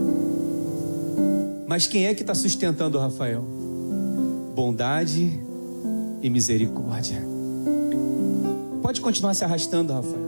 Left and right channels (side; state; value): both; inverted; correlation -1.00